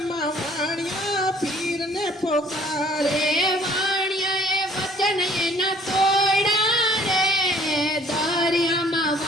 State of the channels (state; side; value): normal; both; correlation 0.57